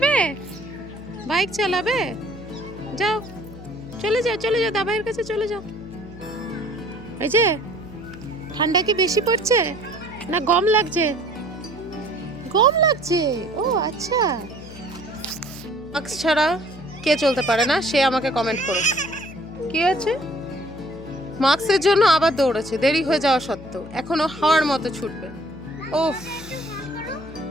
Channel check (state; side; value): noise; left; hum, 16 dB below the sound